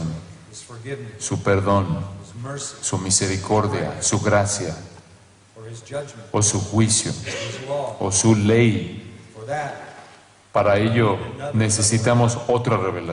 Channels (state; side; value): identical; both; correlation 1.00